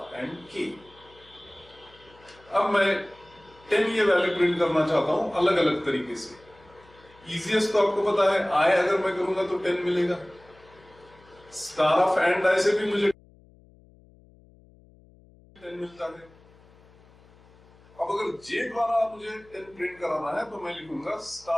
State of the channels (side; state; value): left; noise; hum, 27 dB below the sound